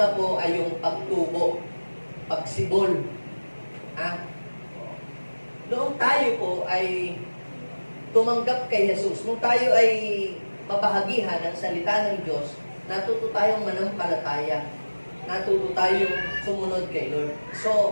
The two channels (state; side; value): inverted; both; correlation -1.00